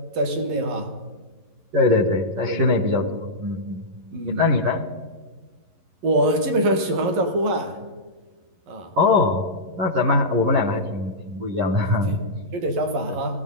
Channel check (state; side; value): late; left; 11 ms